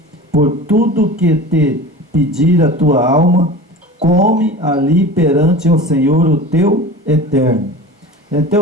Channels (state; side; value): normal; both; correlation 0.35